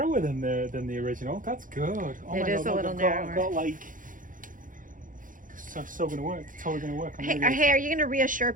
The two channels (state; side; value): late; left; 0.39 ms